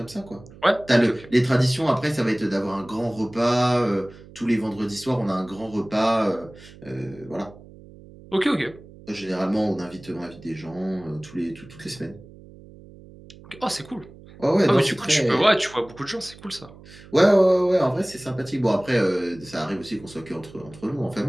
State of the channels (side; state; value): right; noise; hum, 20 dB below the sound